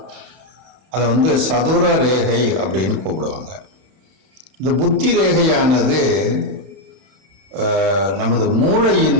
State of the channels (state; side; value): late; left; 32 ms